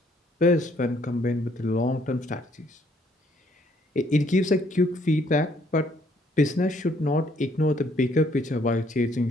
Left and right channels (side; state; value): both; normal; correlation 0.66